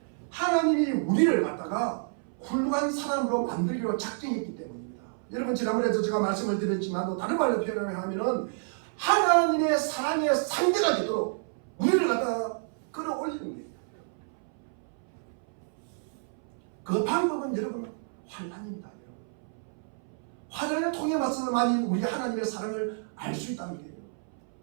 하나님이 우리를 갖다가 훌륭한 사람으로 만들기로 작정했기 때문입니다. 여러분, 지난번에도 제가 말씀을 드렸지만 다른 말로 표현하면은 하나님의 사랑의 상대가 되도록 우리를 갖다가 끌어올리는 거예요. 그 방법은 여러분 환난입니다. 여러분. 환난을 통해 맞서만이 우리 하나님의 사랑을 알 수 있다는 거예요.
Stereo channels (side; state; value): left; silent; 58 dB below the other